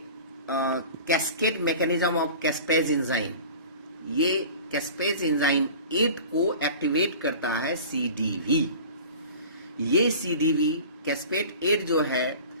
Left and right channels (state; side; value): inverted; both; correlation -0.40